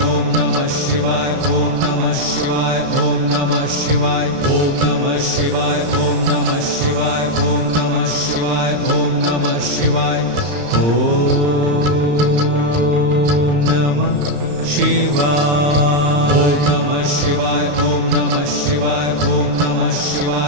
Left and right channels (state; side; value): late; left; 35 ms